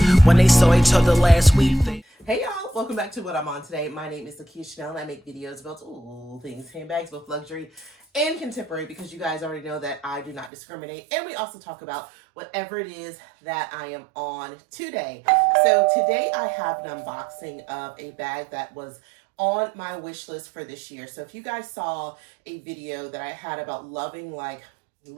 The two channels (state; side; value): drops out; left; at 10.5 s